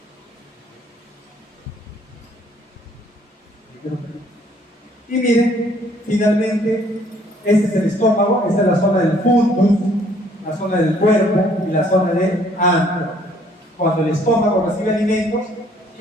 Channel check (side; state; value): both; normal; correlation 0.62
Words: Y miren, finalmente, este es el estómago, esta es la zona del fundus, la zona del cuerpo y la zona del antro. Cuando el estómago recibe alimentos,